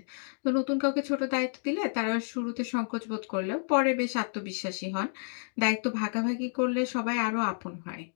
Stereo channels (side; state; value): right; silent; digital silence